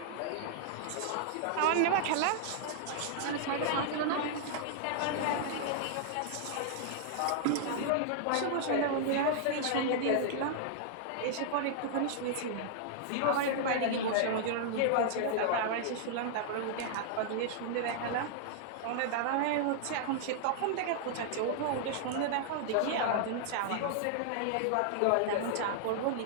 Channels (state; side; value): different; both; correlation -0.01